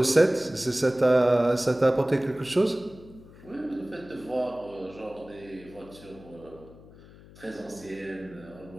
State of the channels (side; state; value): left; noise; hum, 21 dB below the sound